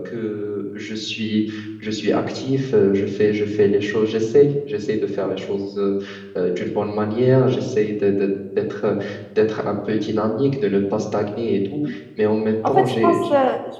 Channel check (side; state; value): both; identical; correlation 1.00